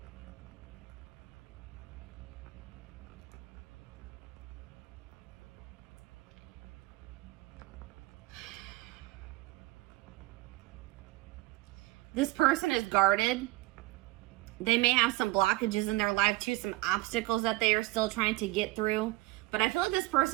This person is guarded. They may have some blockages in their life too, some obstacles that they are still trying to get through. But I feel like this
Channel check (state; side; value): quieter; left; 20.1 dB